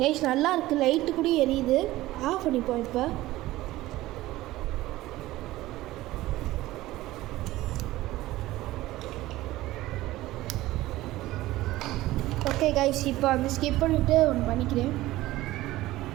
நல்லா இருக்குது, லைட்டு கூட எரியுது. ஆஃப் பண்ணிப்போம் இப்போ. ஓகே கைஸ், இப்போ அந்த ஸ்கிப் பண்ணிவிட்டு ஒன்று பண்ணிக்கிறேன்.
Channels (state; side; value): quieter; left; 17.0 dB